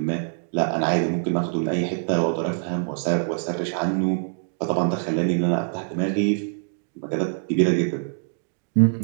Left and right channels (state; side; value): silent; left; digital silence